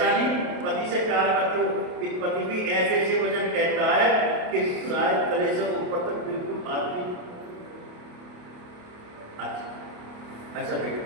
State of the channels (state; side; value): late; left; 28 ms